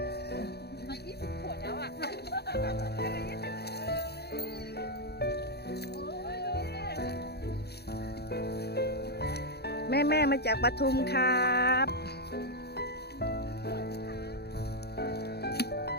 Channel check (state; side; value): late; right; 0.47 ms